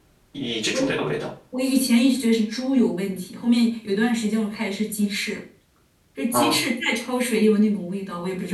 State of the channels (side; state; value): both; identical; correlation 1.00